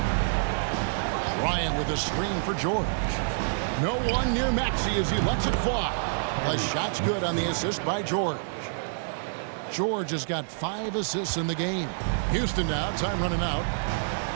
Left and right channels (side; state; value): left; silent; digital silence